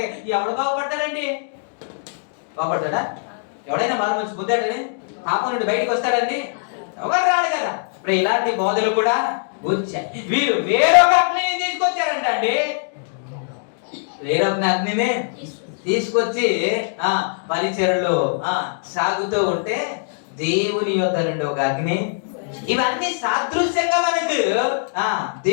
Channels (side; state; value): right; silent; digital silence